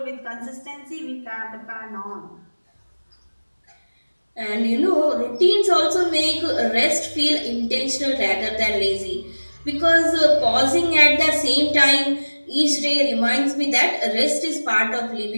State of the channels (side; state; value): both; inverted; correlation -1.00